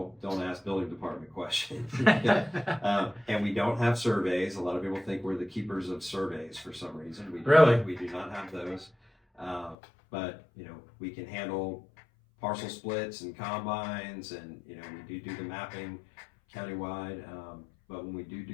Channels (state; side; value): drops out; right; at 9.8 s